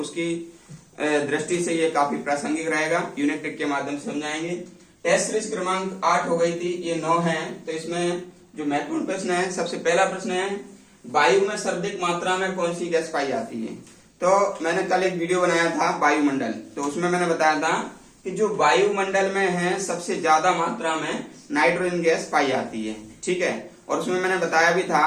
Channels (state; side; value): identical; both; correlation 1.00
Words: दृष्टि से ये काफी प्रासंगिक रहेगा। यूनिट टेक के माध्यम से समझाएंगे। टेस्ट सीरीज क्रमांक 8 हो गई थी, ये 9 है। तो इसमें जो महत्वपूर्ण प्रश्न है, सबसे पहला प्रश्न है वायु में सर्वाधिक मात्रा में कौन सी गैस पाई जाती है। तो मैंने कल एक वीडियो बनाया था वायुमंडल, तो उसमें मैंने बताया था कि जो वायुमंडल में है सबसे ज्यादा मात्रा में नाइट्रोजन गैस पाई जाती है, ठीक है। और उसमें मैंने बताया भी था